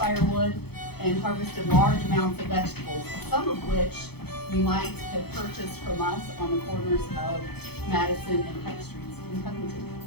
and harvested large amounts of vegetables, some of which you might have purchased from us on the corners of Madison and Pike Streets in Covington.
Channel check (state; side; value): late; right; 0.97 ms